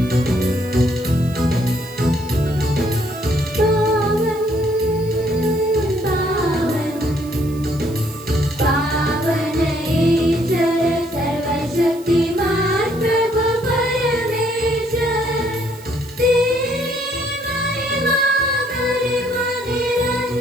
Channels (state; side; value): noise; right; hiss, 21 dB below the sound